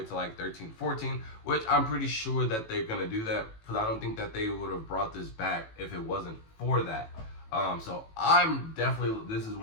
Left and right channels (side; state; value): right; late; 18 ms